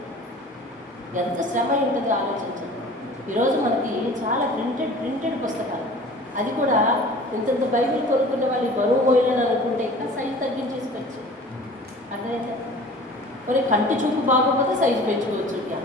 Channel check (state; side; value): normal; both; correlation 0.44